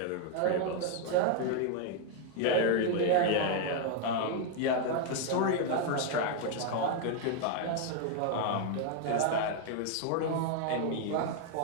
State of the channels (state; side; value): different; both; correlation 0.00